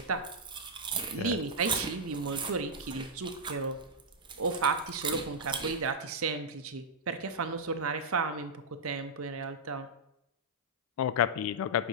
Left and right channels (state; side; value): normal; both; correlation -0.08